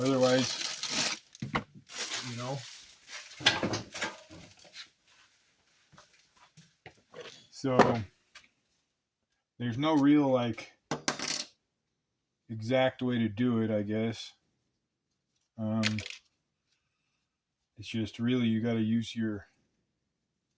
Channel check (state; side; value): identical; both; correlation 1.00